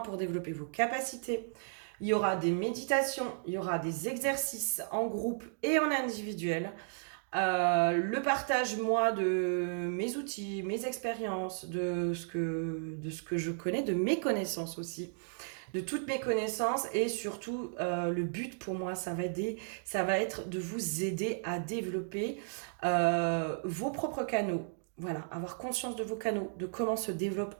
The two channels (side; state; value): left; silent; digital silence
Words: développer vos capacités. Il y aura des méditations, il y aura des exercices en groupe et en individuel. Le partage, moi, de mes outils, mes expériences, de ce que je connais, de mes connaissances aussi, de toutes mes connaissances et surtout, le but pour moi, ça va être de vous aider à développer vos propres canaux. Voilà, avoir conscience de vos canaux, de comment se développe